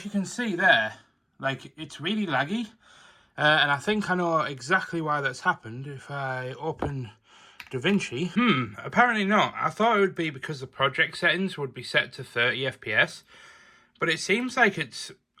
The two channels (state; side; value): identical; both; correlation 1.00